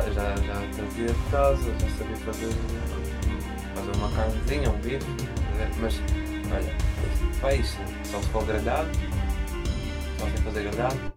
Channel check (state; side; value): identical; both; correlation 1.00